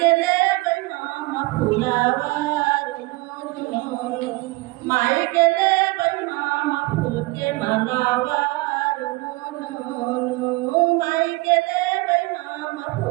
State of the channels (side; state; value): left; quieter; 23.6 dB